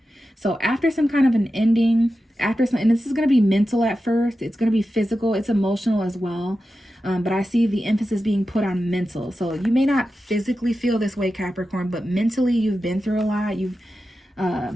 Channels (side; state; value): both; normal; correlation 0.92